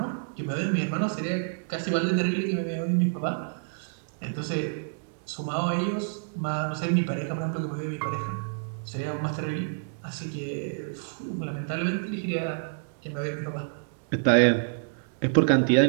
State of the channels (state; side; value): silent; left; digital silence